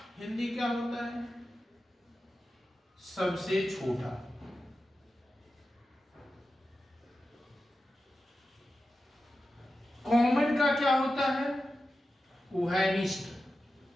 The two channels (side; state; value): both; normal; correlation 0.92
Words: हिंदी क्या होता है? सबसे छोटा। कॉमन का क्या होता है? उभयनिष्ठ।